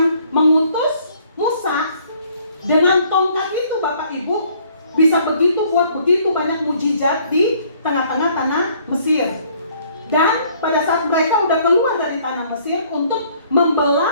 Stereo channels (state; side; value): inverted; both; correlation -0.61